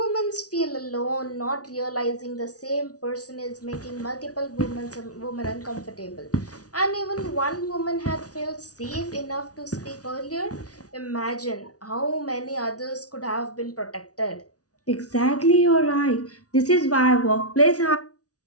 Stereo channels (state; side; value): late; right; 0.68 ms